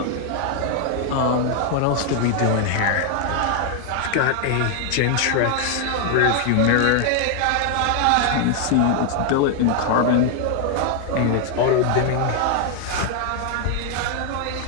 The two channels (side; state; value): both; different; correlation 0.00